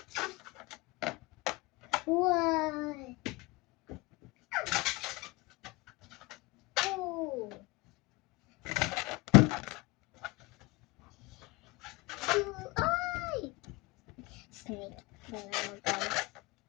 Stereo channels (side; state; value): right; quieter; 23.9 dB